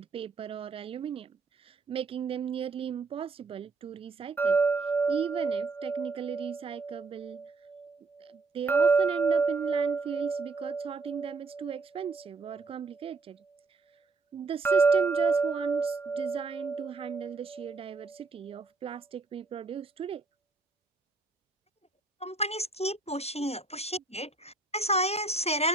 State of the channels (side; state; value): left; quieter; 3.9 dB